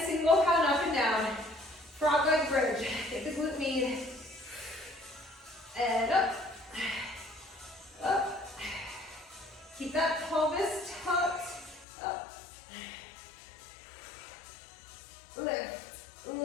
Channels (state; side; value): drops out; right; at 11.9 s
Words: single pound up and down. Frog leg bridge. Get the glute med. And up. Up. Keep that pelvis tucked. Up. Lift.